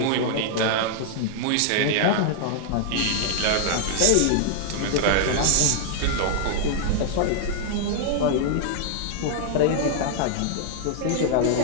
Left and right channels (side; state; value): both; different; correlation -0.01